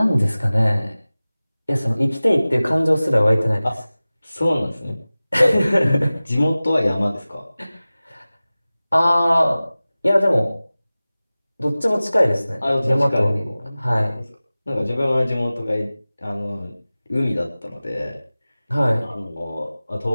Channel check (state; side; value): inverted; both; correlation -0.98